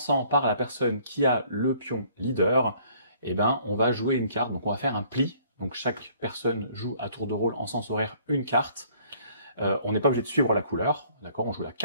par la personne qui a le pion leader, on va jouer une carte. Donc on va faire un pli. Donc chaque personne joue à tour de rôle en sens horaire une carte. On n'est pas obligé de suivre la couleur, d'accord? On joue la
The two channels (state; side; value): inverted; both; correlation -0.60